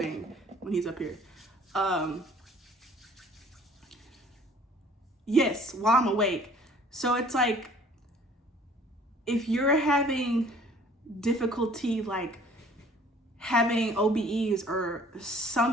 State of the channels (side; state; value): both; normal; correlation 0.53